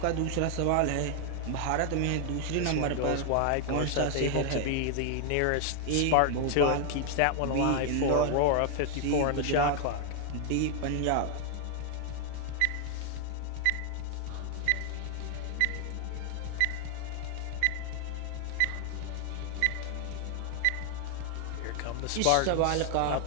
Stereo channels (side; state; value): both; different; correlation 0.00